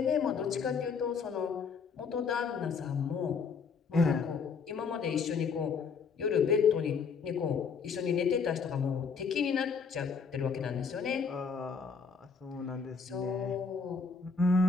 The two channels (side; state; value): right; quieter; 5.6 dB